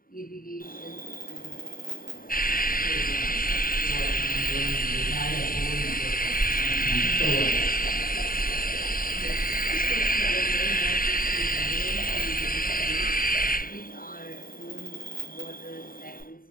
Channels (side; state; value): right; late; 0.41 ms